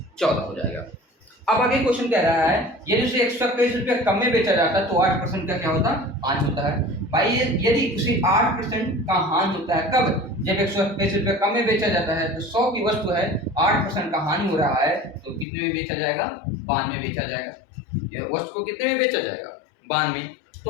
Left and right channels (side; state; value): right; drops out; at 15.5 s